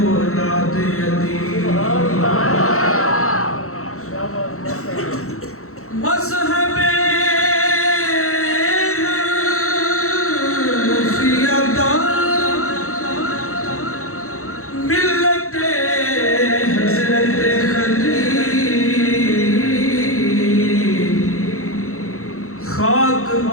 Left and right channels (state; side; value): late; right; 0.63 ms